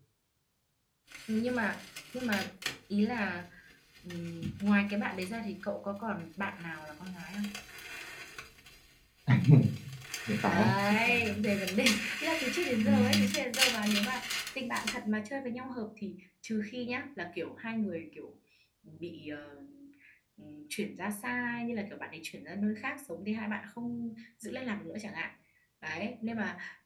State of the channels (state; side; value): identical; both; correlation 1.00